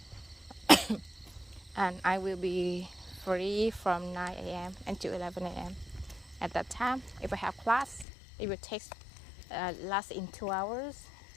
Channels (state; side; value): drops out; right; at 8.1 s